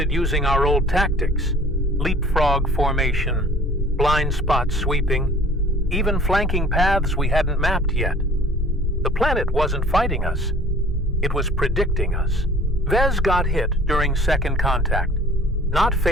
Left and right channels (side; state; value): both; normal; correlation 0.50